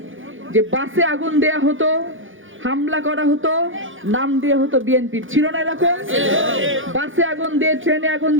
যে বাসে আগুন দেয়া হতো, হামলা করা হতো, নাম দিয়ে হতো বিএনপির, ছিল না এরকম? বাসে আগুন দিয়ে, ট্রেনে আগুন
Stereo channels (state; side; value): late; left; 0.58 ms